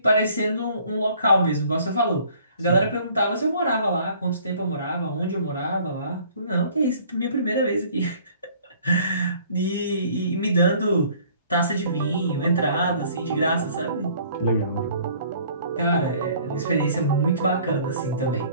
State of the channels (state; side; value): inverted; both; correlation -0.55